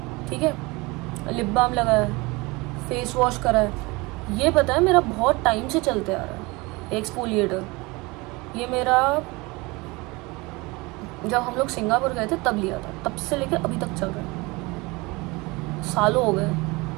ठीक है। लिप बाम लगाया, फेस वॉश करा है। ये पता है मेरा बहुत टाइम से चलते आ रहा है एक्सफोलिएटर। ये मेरा जब हम लोग सिंगापुर गए थे तब लिया था, तब से लेकर अभी तक चल रहा है, सालों हो गए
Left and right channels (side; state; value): left; quieter; 24.4 dB